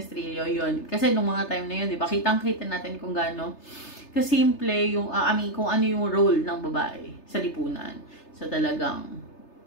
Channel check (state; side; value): late; right; 3.3 ms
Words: Trillo, yun. Kasi nung mga time na yun, di ba, kitang-kita natin kung gaano kasimple yung, kung ano yung role ng babae sa lipunan. So talagang,